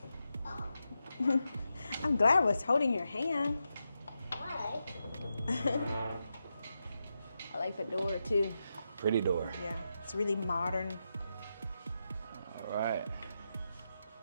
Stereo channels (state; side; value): inverted; both; correlation -0.87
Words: right. I'm glad I was holding your hand. I like the door too. Pretty door. Yeah, it's really modern. All right.